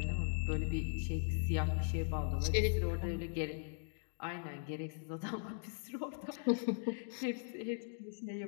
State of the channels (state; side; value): silent; right; digital silence